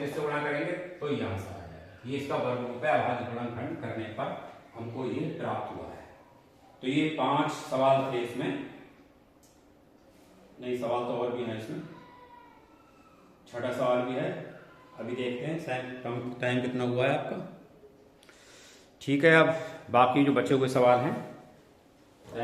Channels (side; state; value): both; identical; correlation 1.00